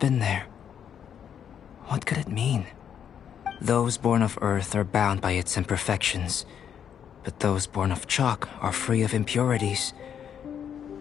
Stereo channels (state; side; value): quieter; right; 8.6 dB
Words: there. What could it mean? Those born of Earth are bound by its imperfections, but those born of chalk are free of impurities.